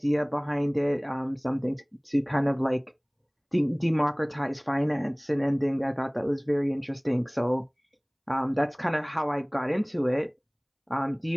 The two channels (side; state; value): both; identical; correlation 1.00